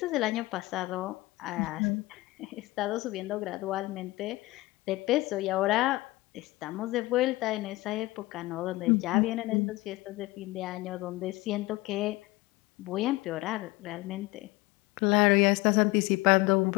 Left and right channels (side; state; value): right; quieter; 20.3 dB